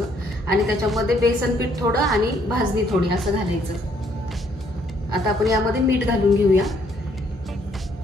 आणि त्याच्यामध्ये बेसन पीठ थोडं आणि भाजणी थोडी असं घालायचं। आता आपण यामध्ये मीठ घालून घेऊया।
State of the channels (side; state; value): both; normal; correlation 0.68